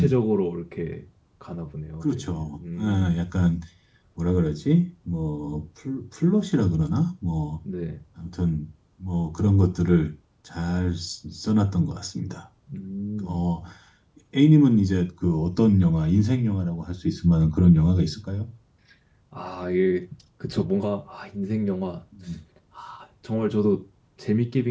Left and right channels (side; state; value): both; identical; correlation 1.00